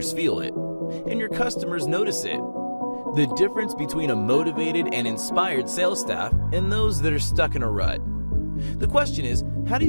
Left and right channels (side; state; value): both; inverted; correlation -1.00